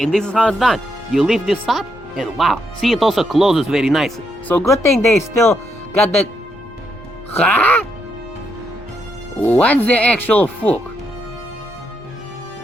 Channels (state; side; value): normal; both; correlation 0.78